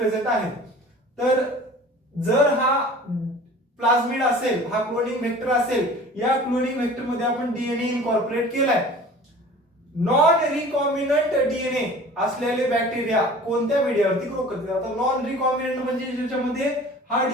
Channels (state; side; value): normal; both; correlation 0.43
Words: आहेत. तर जर हा प्लाझमिड असेल, हा क्लोनिंग वेक्टर असेल, या क्लोनिंग वेक्टर मध्ये आपण डीएनए इनकॉर्पोरेट केलाय. नॉन रिकॉम्बिनंट डीएनए असलेले बॅक्टेरिया कोणत्या मीडियावरती ग्रो करतात. आता नॉन रिकॉम्बिनंट म्हणजे ज्याच्यामध्ये हा